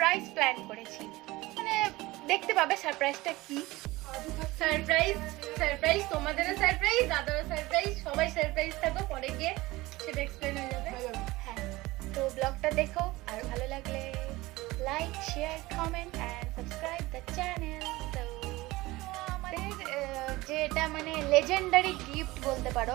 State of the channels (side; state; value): left; quieter; 19.9 dB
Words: প্ল্যান করেছি। মানে দেখতে পাবে সারপ্রাইজটা কি। সারপ্রাইজ সারপ্রাইজ তোমাদেরও সারপ্রাইজ, দাদারও সারপ্রাইজ, সবাই সারপ্রাইজ থাকো, পরে গিয়ে সেটা এক্সপ্লেন হয়ে যাবে। হ্যাঁ, তো ব্লগটা দেখো, আর ভালো লাগলে like, share, comment and subscribe the channel. তো আমাদের যেটা মানে লেজেন্ডারি গিফট বলতে পারো,